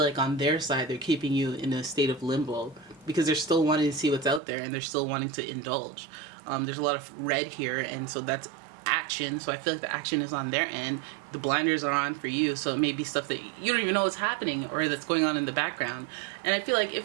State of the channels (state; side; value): drops out; left; at 4.4 s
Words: like on their side, they're keeping you in a state of limbo because they're still wanting to see what's out there and they're still wanting to indulge. There's a lot of red here, and so that's action. So I feel like the action is on their end. The blinders are on for you, so it may be stuff that you don't even know is happening or that's going on in the background. And I feel like